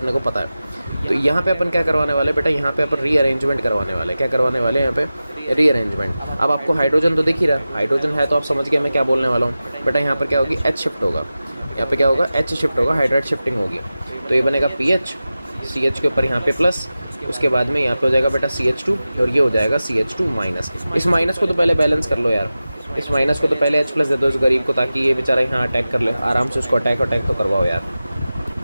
को पता है। तो यहाँ पे अपन क्या करवाने वाले बेटा, यहाँ पे अपन रीअरेंजमेंट करवाने वाले। क्या करवाने वाले यहाँ पे, रीअरेंजमेंट। अब आपको हाइड्रोजन तो दिख ही रहा है, हाइड्रोजन है तो आप समझ गए मैं क्या बोलने वाला हूँ बेटा। यहाँ पर क्या होगी, H शिफ्ट होगा, यहाँ पे क्या होगा, H शिफ्ट होगा, हाइड्राइड शिफ्टिंग होगी। तो ये बनेगा PH, CH के ऊपर यहाँ पे प्लस, उसके बाद में यहाँ पे हो जाएगा बेटा CH2 और ये हो जाएगा CH2 माइनस। इस माइनस को तो पहले बैलेंस कर लो यार, इस माइनस को तो पहले H प्लस दे दो इस गरीब को, ताकि ये बेचारा यहाँ अटैक कर ले आराम से। उसको अटैक तो करवाओ यार,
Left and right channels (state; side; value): inverted; both; correlation -0.95